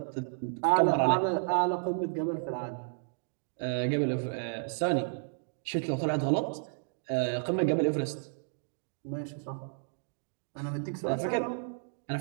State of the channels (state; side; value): silent; left; digital silence